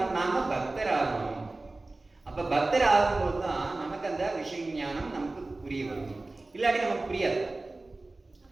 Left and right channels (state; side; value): quieter; left; 3.1 dB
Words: நாம் பக்தர் ஆகணும். அப்போ பக்தர் ஆகும்போது தான் நமக்கு அந்த விஷய ஞானம் நமக்கு புரிய வரும். இல்லாட்டி நமக்கு புரியாது.